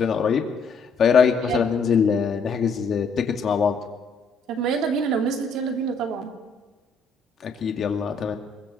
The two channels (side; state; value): right; quieter; 4.0 dB